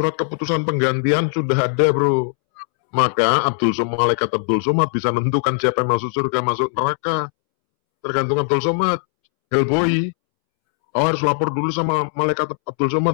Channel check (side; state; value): right; silent; 66 dB below the other